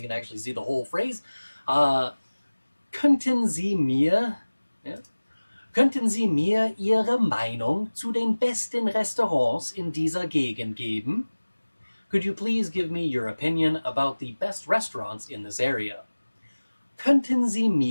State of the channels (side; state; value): both; inverted; correlation -1.00